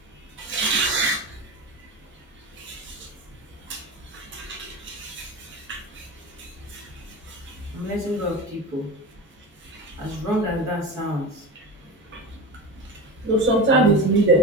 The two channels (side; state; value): both; normal; correlation 0.27